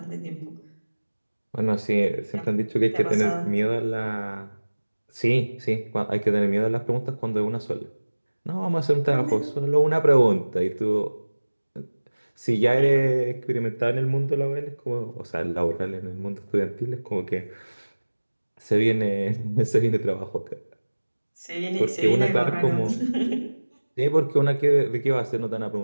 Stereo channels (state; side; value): inverted; both; correlation -1.00